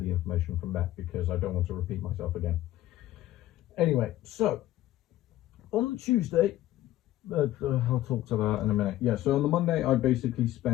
information from that, because I don't want to repeat myself again. Anyway, so on the Tuesday, I'll talk to that in a minute. Yeah, so on the Monday, I basically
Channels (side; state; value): right; quieter; 14.5 dB